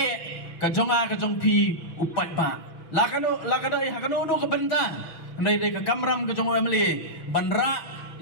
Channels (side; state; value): right; late; 6.1 ms